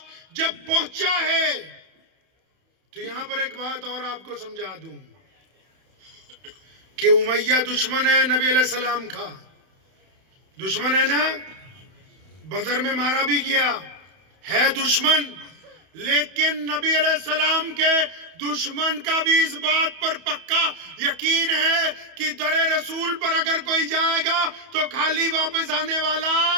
جب پہنچا ہے تو یہاں پر ایک بات اور آپ کو سمجھا دوں کہ امیہ دشمن ہے نبی علیہ السلام کا, دشمن ہے نا, بدر میں مارا بھی گیا ہے دشمن, لیکن نبی علیہ السلام کے دشمن کا بھی اس بات پر پکا یقین ہے کہ در رسول پر اگر کوئی جائے گا تو خالی واپس آنے والا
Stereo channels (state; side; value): late; left; 31 ms